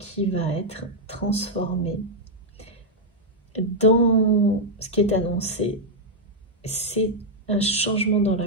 va être transformée. Dans ce qui est annoncé, c'est un changement dans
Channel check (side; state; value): both; normal; correlation -0.03